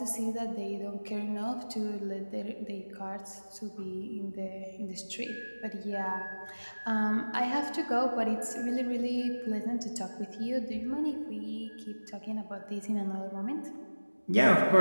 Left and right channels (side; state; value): both; inverted; correlation -1.00